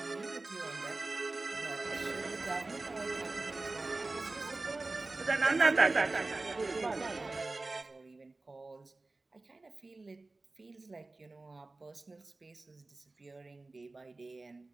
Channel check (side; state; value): left; quieter; 3.3 dB